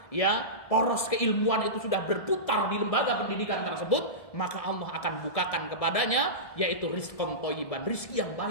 ya poros keilmuan itu sudah berputar di lembaga pendidikan tersebut, maka Allah akan bukakan kepadanya yaitu rizqan thayyiban, rizki yang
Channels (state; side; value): late; right; 1.7 ms